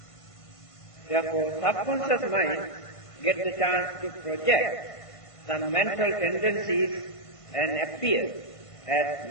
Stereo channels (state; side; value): late; right; 1.5 ms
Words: Therefore, subconscious mind gets the chance to project some mental tendencies and appear as